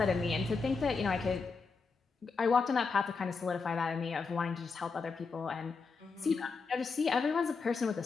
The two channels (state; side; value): quieter; right; 4.7 dB